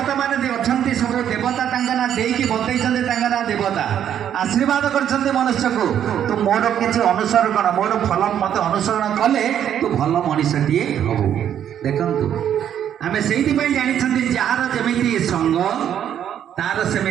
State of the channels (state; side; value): quieter; left; 9.8 dB